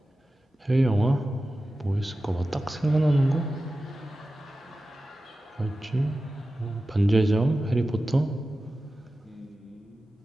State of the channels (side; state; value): both; normal; correlation 0.94